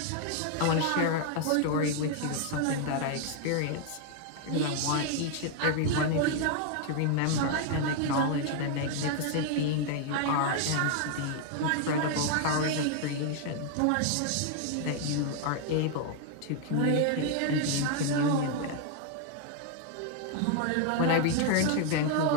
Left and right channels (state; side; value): different; both; correlation 0.00